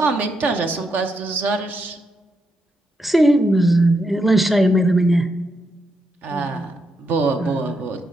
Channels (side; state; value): both; normal; correlation 0.82